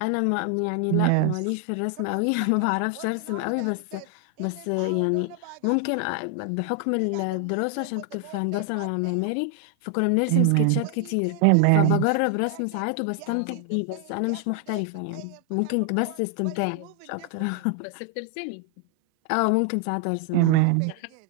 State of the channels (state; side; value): different; both; correlation 0.00